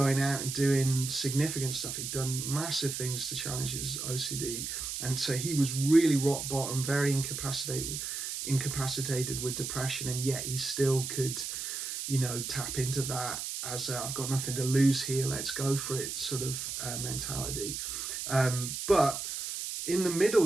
out and doing significant stuff. He'd done massive things to challenge his OCD, and so he was really rock bottom, very incapacitated with depression, and yet he still could, tap into that as I've got nothing to lose here, let's go for it sort of mentality. But in the middle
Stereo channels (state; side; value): noise; right; hiss, 5 dB below the sound